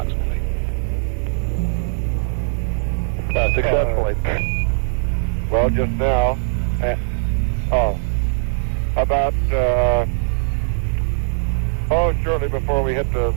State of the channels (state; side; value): silent; left; digital silence